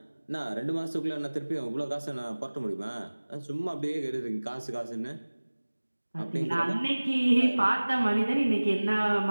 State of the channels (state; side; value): inverted; both; correlation -1.00